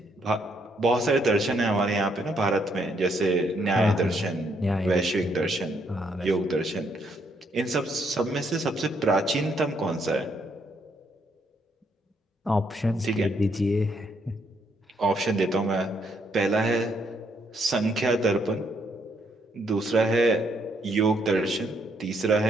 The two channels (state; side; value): normal; both; correlation 0.73